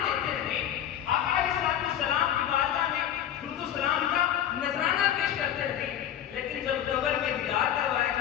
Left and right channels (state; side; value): quieter; right; 10.7 dB